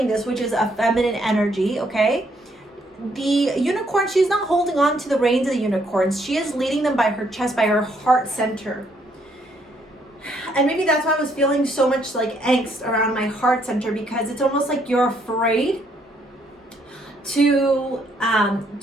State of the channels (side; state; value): both; normal; correlation 0.70